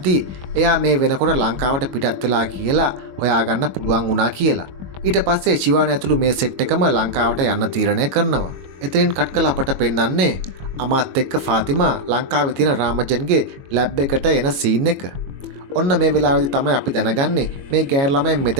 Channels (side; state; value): left; late; 22 ms